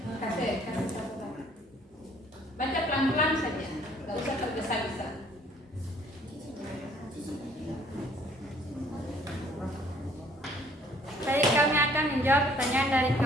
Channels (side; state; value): both; normal; correlation 0.59